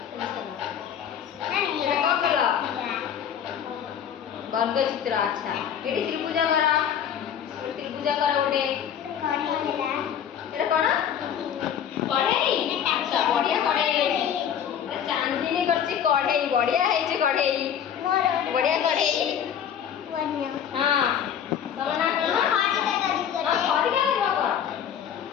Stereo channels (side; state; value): right; quieter; 8.9 dB